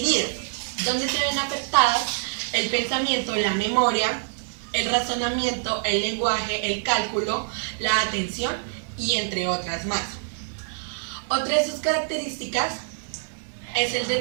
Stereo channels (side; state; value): left; silent; digital silence